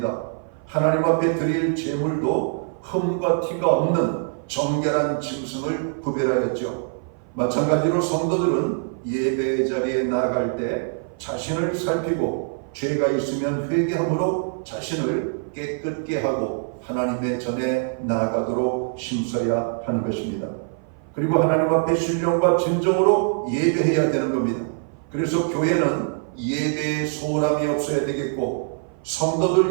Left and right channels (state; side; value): silent; left; 56 dB below the other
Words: 하나님 앞에 드릴 제물도 흠과 티가 없는 정결한 짐승을 구별하였죠. 마찬가지로 성도들은 예배의 자리에 나아갈 때 자신을 살피고 죄가 있으면 회개함으로 자신을 깨끗게 하고 하나님의 전에 나아가도록 힘써야 하는 것입니다. 그리고 하나님 앞에 신령과 진정으로 예배해야 되는 겁니다. 그래서 교회는 예배에 소홀함이 없어야 되겠고